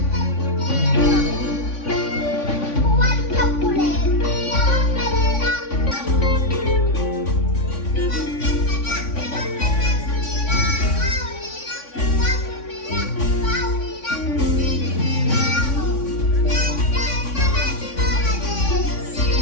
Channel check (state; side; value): late; right; 3.5 ms